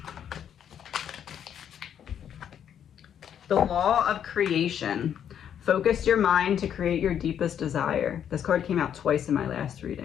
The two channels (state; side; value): quieter; right; 9.1 dB